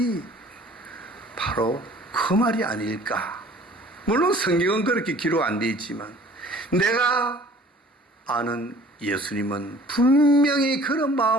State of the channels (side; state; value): both; normal; correlation 0.50